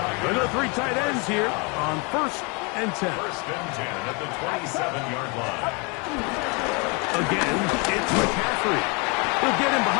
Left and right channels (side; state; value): right; quieter; 31.2 dB